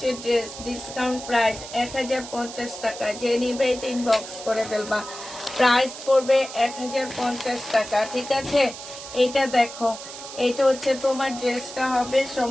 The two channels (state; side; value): noise; right; hiss, 12 dB below the sound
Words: ড্রেস, ডিসকাউন্ট প্রাইস 1050 টাকা। যে নিবে এটা ইনবক্স করে ফেলবা। প্রাইস পড়বে 1050 টাকা, ঠিক আছে। এটা দেখো, এটা হচ্ছে তোমার ড্রেসটা হবে